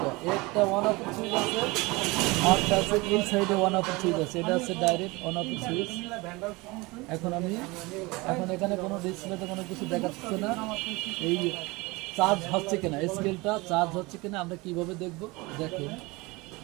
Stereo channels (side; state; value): left; quieter; 23.8 dB